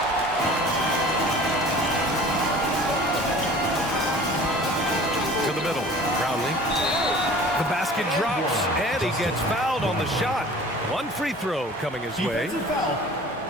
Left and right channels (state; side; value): normal; both; correlation 0.45